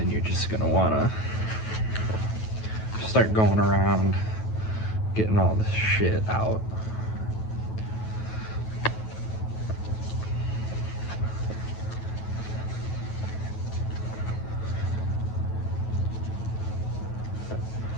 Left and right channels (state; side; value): late; right; 9.2 ms